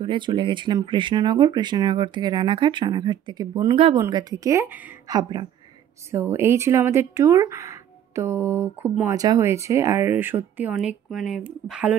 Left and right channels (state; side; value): quieter; left; 10.2 dB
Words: চলে গেছিলাম কৃষ্ণনগর, কৃষ্ণনগর থেকে রানাঘাট, রানাঘাট থেকে বনগা, বনগা থেকে হাবড়া। সো এই ছিল আমাদের ট্যুর। তো খুব মজা হয়েছে আর সত্যি অনেক মানে ভালো